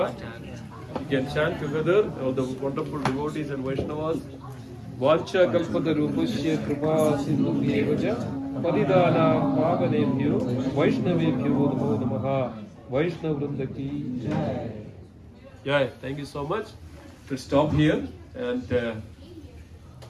We can chant together, all the wonderful devotees and Vaishnavas. Vancha Kalpatarupasya Kripa Sindhu Bhyevaja Padidana Pavanebhyo Vaishnavebhyo Namo Namaha. Vaishnav Vrinda ki Jai. Yeah, thank you so much. We'll stop here. And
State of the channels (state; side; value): identical; both; correlation 1.00